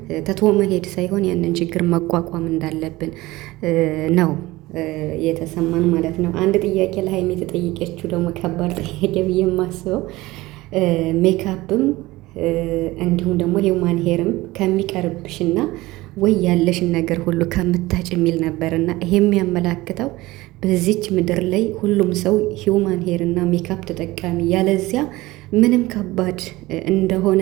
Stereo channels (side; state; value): left; quieter; 19.3 dB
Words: ተቶ መሄድ ሳይሆን ያንን ችግር መቋቋም እንዳለብን ነው የተሰማን ማለት ነው። አንድ ጥያቄ ለሀይሚ የተጠየቀችው ደግሞ ከባድ ጥያቄ ብዬ የማስበው ሜካፕም እንዲሁም ደግሞ ሂውማን ሄርም ከሚቀርብሽና ወይ ያለሽን ነገር ሁሉ ከምታጭ የሚል ነበርና ይሄ የሚያመላክተው በዚች ምድር ላይ ሁሉም ሰው ሂውማን ሄር እና ሜካፕ ተጠቃሚ ያለዚያ ምንም ከባድ እንደሆነ